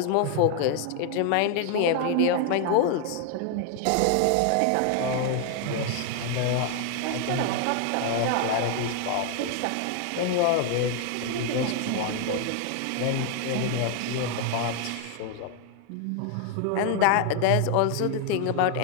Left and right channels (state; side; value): different; both; correlation 0.00